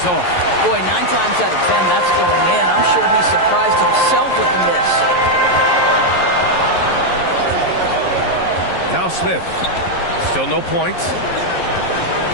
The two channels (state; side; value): late; right; 11 ms